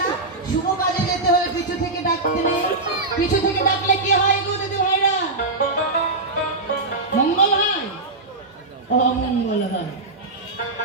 শুভ কাজে যেতে হলে পিছু থেকে ডাকতে নেই। পিছু থেকে ডাকলে কি হয় গো দিদি ভাইরা? মঙ্গল হয়, অমঙ্গল হয়।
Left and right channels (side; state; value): left; quieter; 3.2 dB